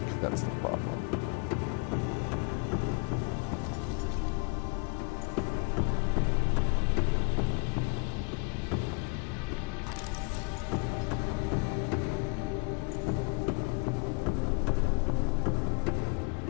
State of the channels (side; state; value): right; quieter; 31.2 dB